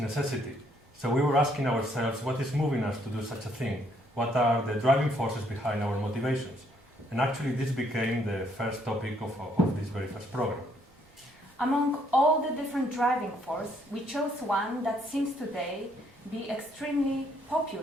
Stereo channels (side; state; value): both; normal; correlation 0.69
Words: So we were asking ourselves, what is moving us to do such a thing? What are the driving forces behind our motivations? And actually, this became the first topic of this very first program. Among all the different driving forces, we chose one that seems today be extremely